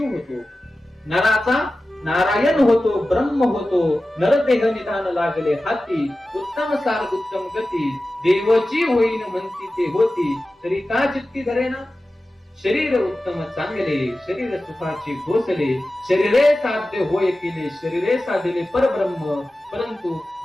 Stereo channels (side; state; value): both; normal; correlation 0.95